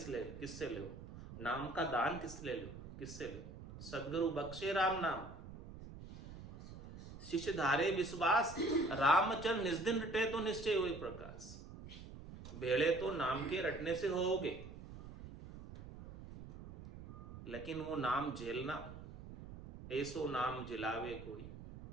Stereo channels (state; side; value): noise; right; rumble, 13 dB below the sound